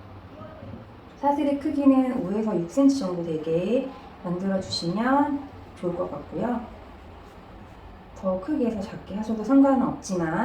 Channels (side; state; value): both; identical; correlation 1.00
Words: 사슬의 크기는 5에서 6cm 정도 되게 만들어주시면 좋을 것 같고요. 더 크게 해서 작게 하셔도 상관은